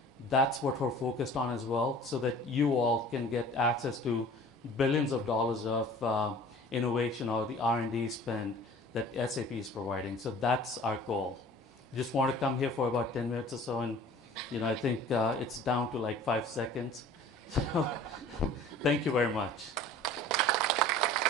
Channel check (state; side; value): normal; both; correlation 0.46